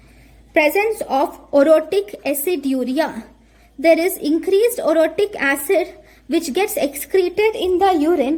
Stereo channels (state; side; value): identical; both; correlation 1.00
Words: orotic aciduria. There is increased orotic acid which gets excreted in the